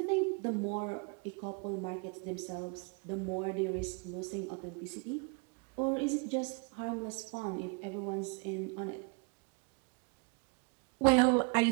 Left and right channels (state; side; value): quieter; left; 34.1 dB